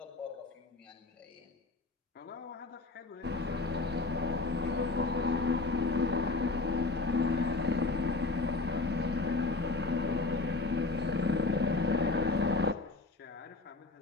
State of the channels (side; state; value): right; quieter; 3.4 dB